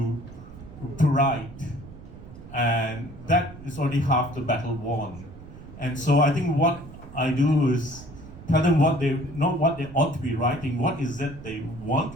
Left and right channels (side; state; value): right; noise; rumble, 16 dB below the sound